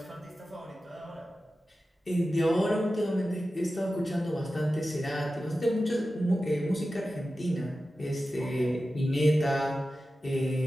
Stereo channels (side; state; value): both; normal; correlation 0.94